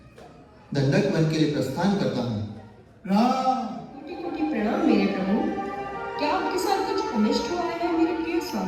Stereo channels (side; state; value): both; identical; correlation 1.00